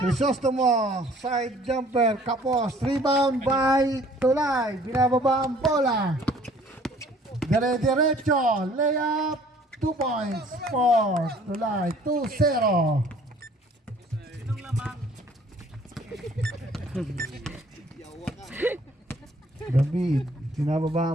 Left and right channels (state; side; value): normal; both; correlation 0.55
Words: side jumper, kapos, rebound by Tulay. Binababa ang bola. Dire-diretso, layup, 2 points for Tulay, 2-0. David,